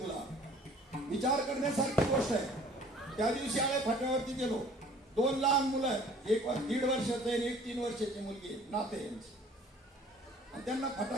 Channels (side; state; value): both; normal; correlation 0.52